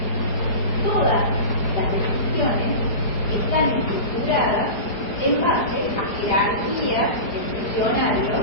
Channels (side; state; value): right; late; 4.8 ms